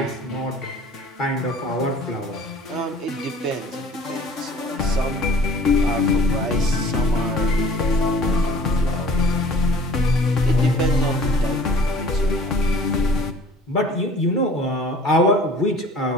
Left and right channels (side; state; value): both; normal; correlation 0.48